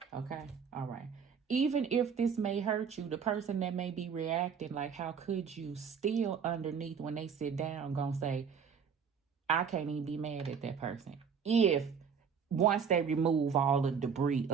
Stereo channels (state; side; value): quieter; left; 6.7 dB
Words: Okay? All right. Even if this may hurt you, the person that may be reacting like, how could you, still underneath when they sit down gonna say, I can't even be mad at that person. If once they remove all the debris